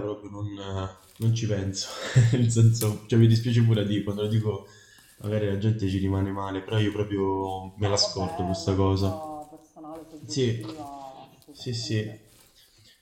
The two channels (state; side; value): identical; both; correlation 1.00